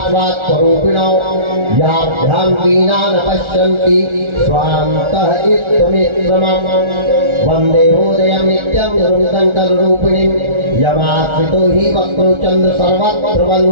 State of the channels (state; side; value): late; left; 1.4 ms